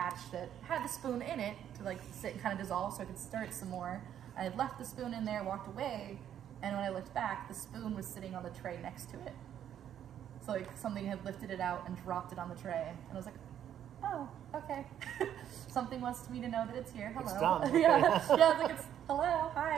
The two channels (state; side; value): quieter; left; 10.1 dB